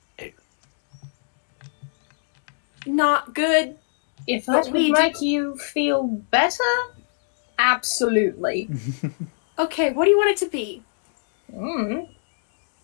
not good? If that would make you feel better, absolutely. Okay, what do you want it to be?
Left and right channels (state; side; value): silent; right; digital silence